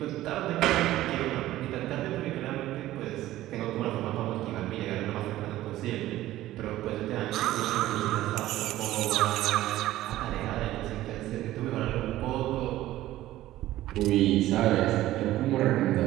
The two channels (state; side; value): quieter; left; 15.1 dB